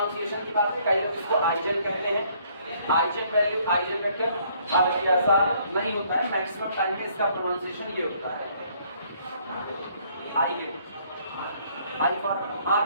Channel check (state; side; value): inverted; both; correlation -0.64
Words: की बात है, कई लोग इसको आइजन कहते हैं, आइजन वैल्यू आइजन वेक्टर। अब ये ऐसा नहीं होता है, मैक्सिमम टाइम में इसका प्रोनाउंसिएशन ये होता है आइगन। आई फॉर